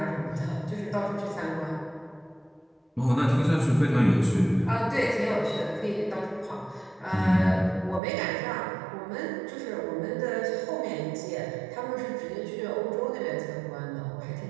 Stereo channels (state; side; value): drops out; left; at 8.0 s